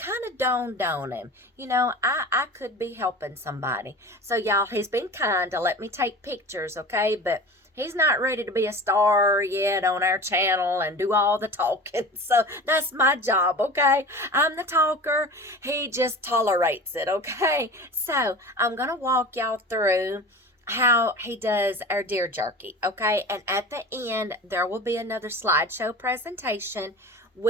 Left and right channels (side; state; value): both; normal; correlation 0.36